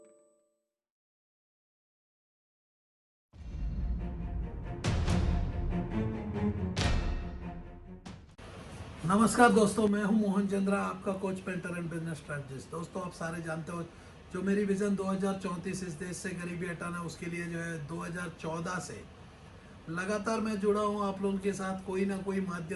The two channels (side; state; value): both; identical; correlation 1.00